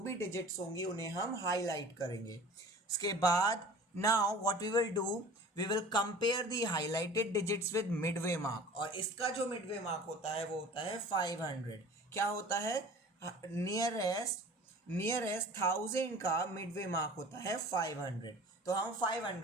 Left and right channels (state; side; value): normal; both; correlation 0.43